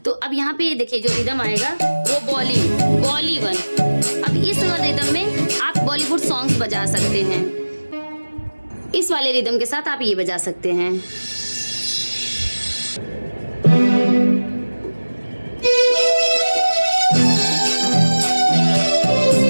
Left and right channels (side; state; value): both; inverted; correlation -1.00